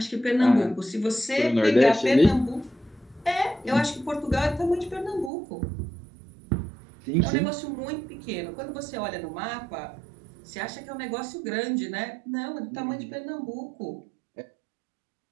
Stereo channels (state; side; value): drops out; left; at 5.3 s